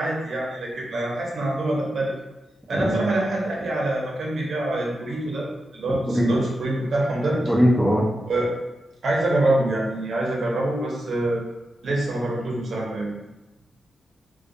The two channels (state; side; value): normal; both; correlation 0.89